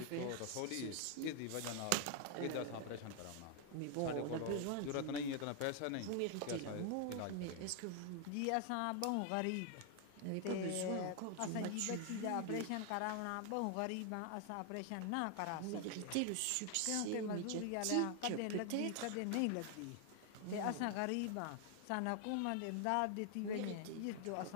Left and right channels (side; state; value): both; different; correlation 0.00